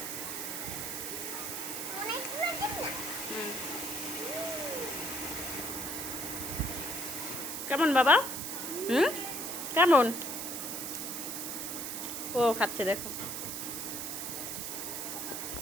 কেমন বাবা? কেমন? ও খাচ্ছে দেখো।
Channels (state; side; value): noise; right; hiss, 4 dB below the sound